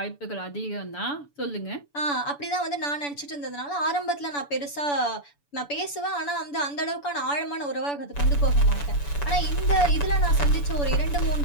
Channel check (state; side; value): late; right; 7.0 ms